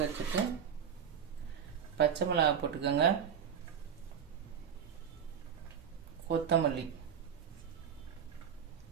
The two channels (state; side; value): quieter; left; 8.0 dB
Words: வச்சுட்டு பச்சை மிளகாய் போட்டுக்கோங்க, கொத்தமல்லி.